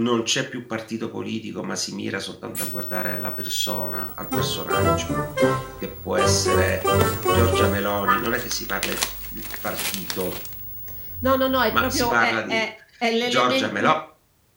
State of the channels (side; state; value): both; identical; correlation 1.00